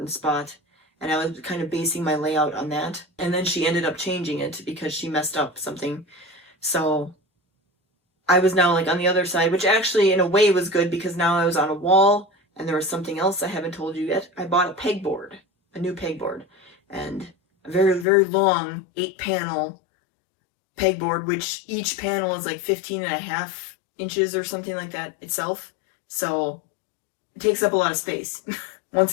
spot, and I was kind of basing my layout on that. And then she ended up changing it because she messed up something. So I was now like on the other side, which actually in a way was good because now I was on a wall, and there was something else I haven't told you yet. I bought a new pegboard, and a very, very long 8-panel pegboard, which each panel is like 15.5 inches or something like that itself. So it takes up a lot of space once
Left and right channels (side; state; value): right; drops out; at 18.1 s